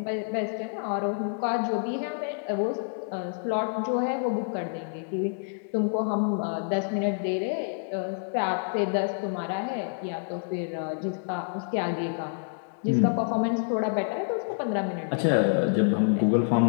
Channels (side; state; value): right; silent; digital silence